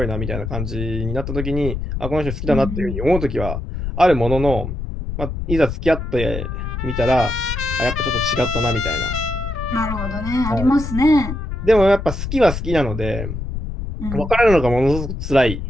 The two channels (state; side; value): noise; left; rumble, 5 dB below the sound